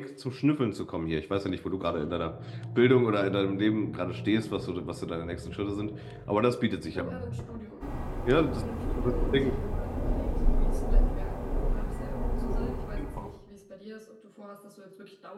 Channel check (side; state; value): both; identical; correlation 1.00